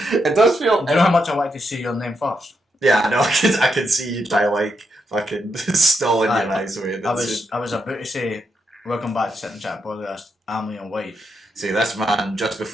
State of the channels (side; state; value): both; normal; correlation 0.82